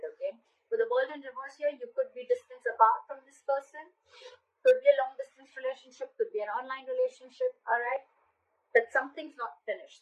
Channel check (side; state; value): both; identical; correlation 1.00